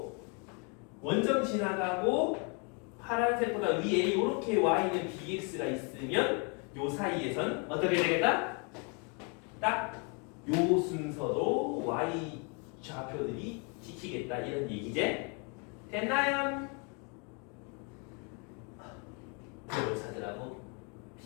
원점 지나가고 파란색보다 위에 이렇게 y는 bx가 있으면 요 사이에선 어떻게 되겠다? 딱 요 순서로 y 좌표들이 지키겠다 이런 얘기지? 됐나요? 뭘 찾으라고?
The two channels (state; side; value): quieter; right; 35.1 dB